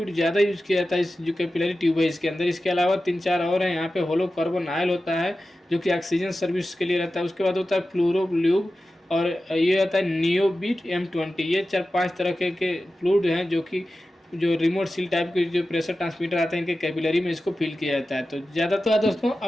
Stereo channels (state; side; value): normal; both; correlation 0.94